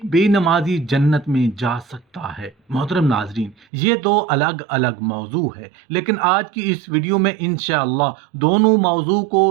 बेनमाजी जन्नत में जा सकता है? मोहतरम नाजरीन, ये दो अलग अलग मौजू है, लेकिन आज की इस वीडियो में इंशाअल्लाह दोनों मौजू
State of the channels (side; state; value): left; drops out; at 3.6 s